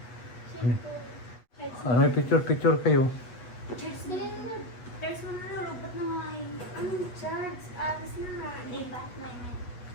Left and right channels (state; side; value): late; right; 8.3 ms